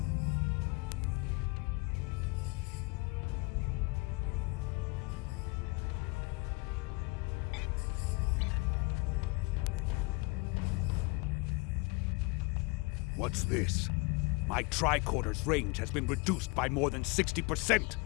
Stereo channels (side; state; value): right; quieter; 26.6 dB